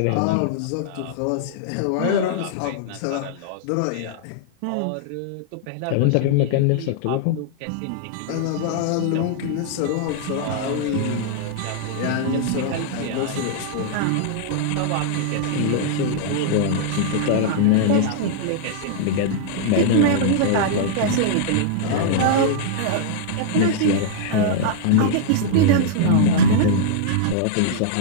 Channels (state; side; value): different; both; correlation -0.01